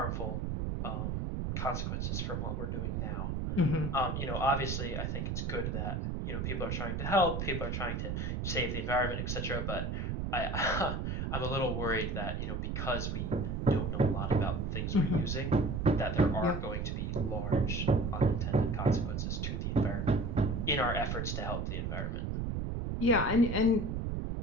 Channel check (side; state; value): right; noise; rumble, 1 dB below the sound